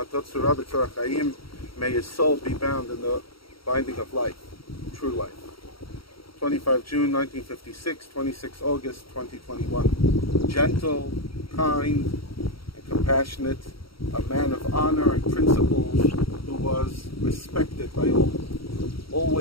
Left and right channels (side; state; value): right; late; 0.75 ms